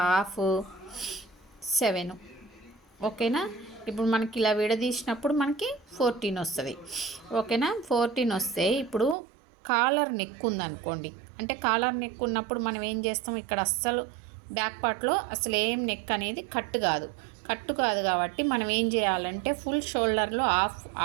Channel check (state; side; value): drops out; left; at 9.2 s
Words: హాఫ్ 7, ఓకేనా? ఇప్పుడు మనకి ఇలా విడదీసినప్పుడు మనకి 14 వస్తుంది, ఓకేనా? 14 వస్తే ఇప్పుడు కాలర్ నెక్ ఉందనుకోండి, అంటే కాలర్ నెక్ ఉన్నప్పుడు మనం ఏం చేస్తాం, ఇక్కడ అస్సలు బ్యాక్ పార్ట్లో అసలు ఏం నెక్ అనేది కట్టు కాదు కాబట్టి మనం ఏం చేయాలంటే ఫుల్ షోల్డర్లో